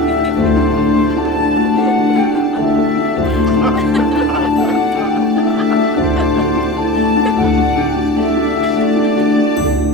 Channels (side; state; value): both; normal; correlation 0.36